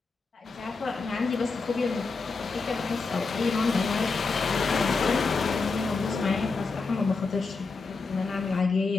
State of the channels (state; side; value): quieter; right; 4.2 dB